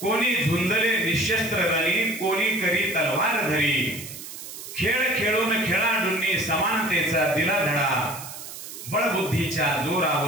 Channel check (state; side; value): noise; right; hiss, 12 dB below the sound